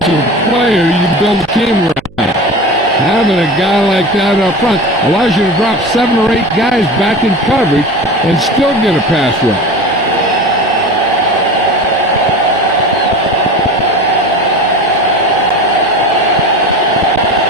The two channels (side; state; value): right; noise; hum, 24 dB below the sound